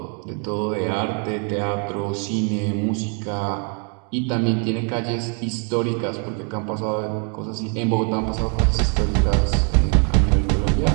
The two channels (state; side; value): quieter; left; 39.9 dB